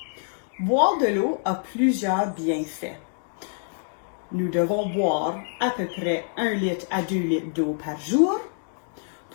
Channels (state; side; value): silent; right; digital silence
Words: Boire de l'eau a plusieurs bienfaits. Nous devons boire à peu près 1 litre à 2 litres d'eau par jour